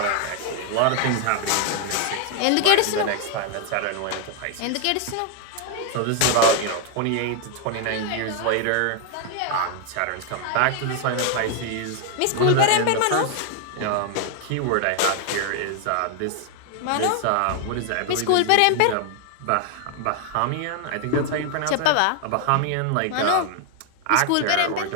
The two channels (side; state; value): both; different; correlation 0.00